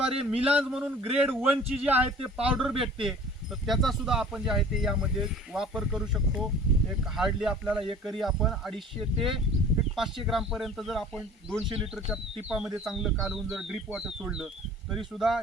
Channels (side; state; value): both; normal; correlation 0.47